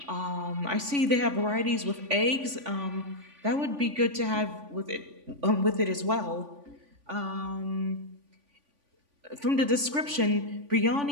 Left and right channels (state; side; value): late; left; 3.5 ms